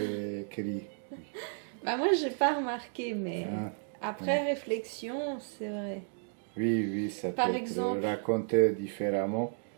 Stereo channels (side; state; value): left; silent; digital silence